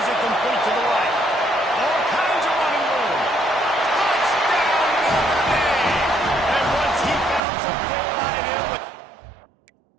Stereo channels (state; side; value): drops out; left; at 7.4 s